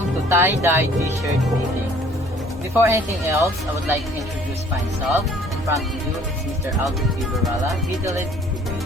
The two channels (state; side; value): normal; both; correlation 0.56